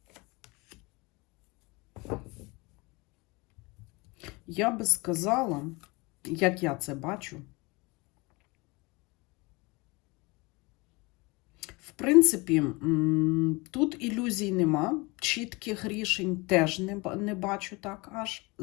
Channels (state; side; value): quieter; right; 25.6 dB